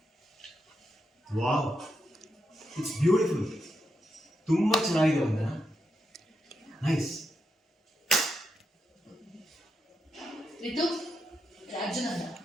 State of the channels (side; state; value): both; normal; correlation 0.84